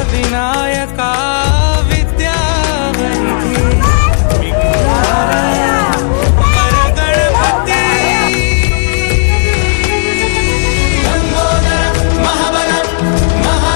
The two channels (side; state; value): right; silent; digital silence